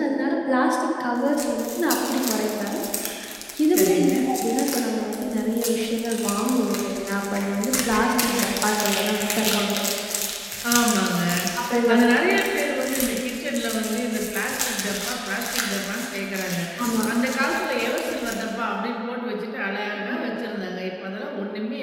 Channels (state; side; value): identical; both; correlation 1.00